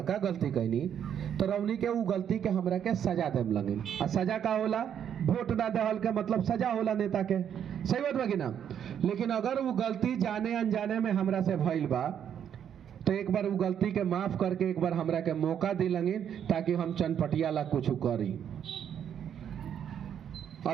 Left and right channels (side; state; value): left; quieter; 9.0 dB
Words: गलती कैनी, तो रौनी के वो गलती के हमरा के सजा देम लगे। आ सजा का होला, वोट ना देहल के मतलब सजा होला नेता के, सही बात बा कि ना। लेकिन अगर वो गलती जाने अनजाने में हमरा से भइल बा तो एक बार वो गलती के माफ करके एक बार हमरा के मौका दी लगे, ताकि हम चनपटिया ला कुछ करी।